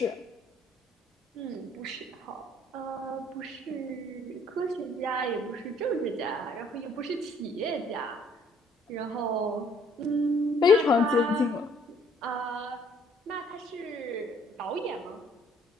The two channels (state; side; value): normal; both; correlation 0.61